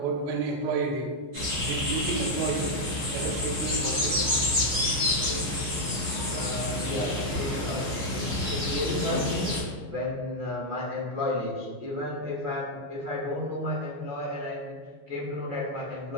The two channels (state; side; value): late; left; 14 ms